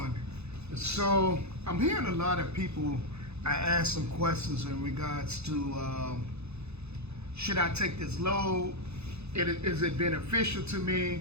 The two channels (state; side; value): late; left; 0.80 ms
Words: So I'm hearing a lot of people. I asked some questions in regards to should I take this load? Is it beneficial to me?